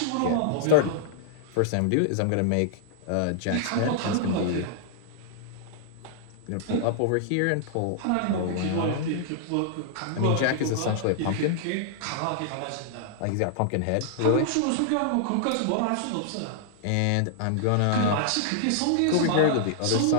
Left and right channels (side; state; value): both; different; correlation -0.01